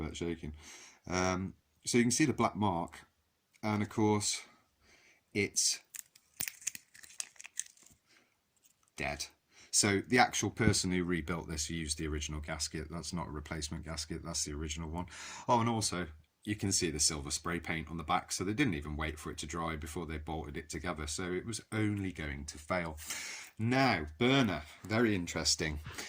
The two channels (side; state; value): both; identical; correlation 1.00